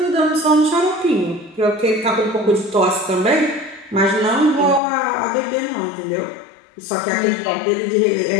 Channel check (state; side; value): drops out; right; at 4.8 s